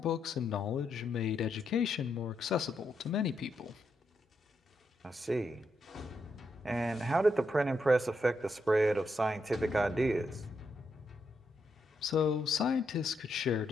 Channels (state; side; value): normal; both; correlation 0.81